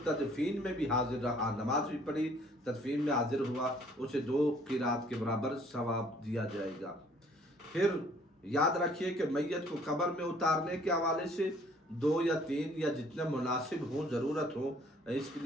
तदफीन में भी हाजिर रहा, नमाज भी पढ़ी, तदफीन में हाजिर हुआ, उसे 2 क़ीरात के बराबर सवाब दिया जाएगा। फिर याद रखिए कि मैयत को कब्र में उतारने के हवाले से 2 या 3 या जितना मुनासिब हो, ज़रूरत हो, इसके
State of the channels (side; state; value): both; normal; correlation 0.59